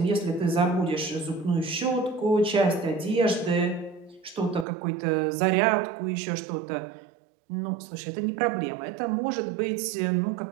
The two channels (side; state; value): left; drops out; at 4.7 s